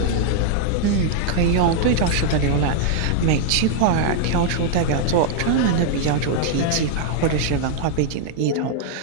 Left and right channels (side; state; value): both; different; correlation 0.00